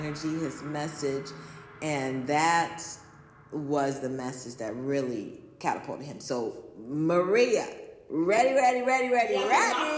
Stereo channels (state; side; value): identical; both; correlation 1.00